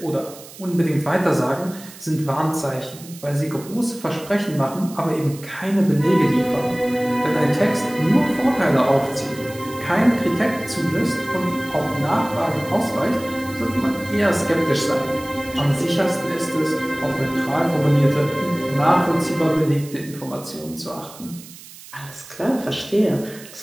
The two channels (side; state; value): right; noise; hiss, 18 dB below the sound